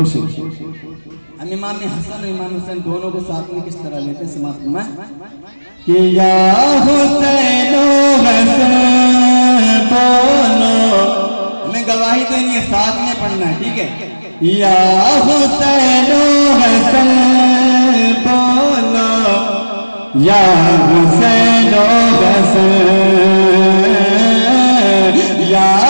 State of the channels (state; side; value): inverted; both; correlation -1.00